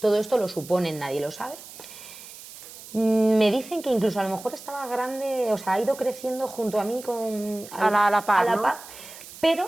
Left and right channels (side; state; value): right; noise; hiss, 16 dB below the sound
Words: esto lo suponen, nadie lo sabe. Me dicen que incluso a lo mejor estaba grande, o sea, ha ido creciendo junto a mí A la par, ¿no?